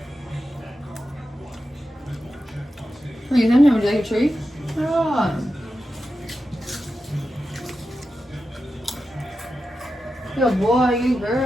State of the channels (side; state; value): both; normal; correlation 0.91